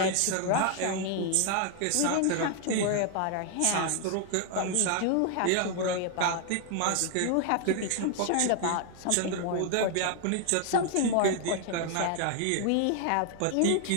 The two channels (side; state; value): both; different; correlation 0.00